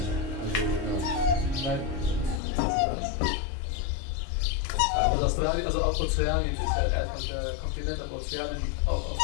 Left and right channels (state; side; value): drops out; right; at 2.4 s